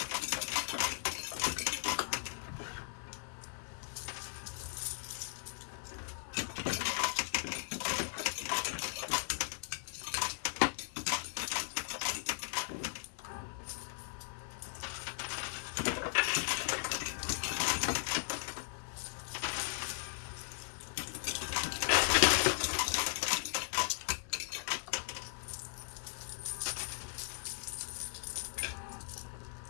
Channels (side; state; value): right; silent; 53 dB below the other